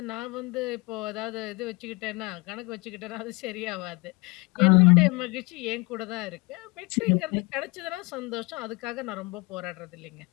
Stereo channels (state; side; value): quieter; right; 25.3 dB